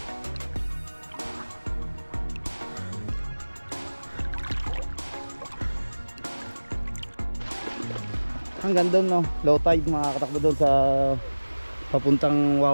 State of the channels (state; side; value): inverted; both; correlation -1.00